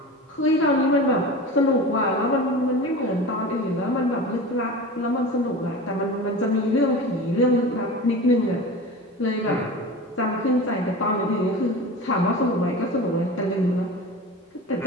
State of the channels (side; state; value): both; normal; correlation 0.32